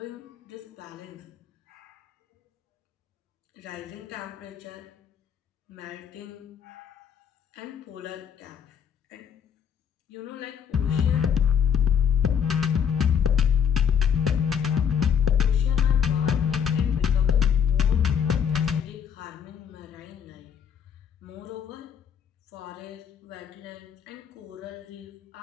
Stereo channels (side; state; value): right; quieter; 7.8 dB